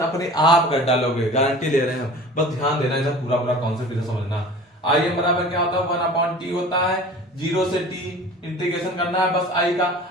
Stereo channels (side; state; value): both; normal; correlation 0.41